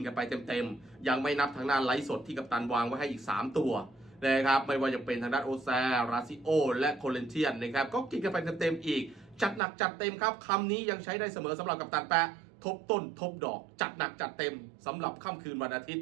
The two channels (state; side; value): drops out; left; at 9.6 s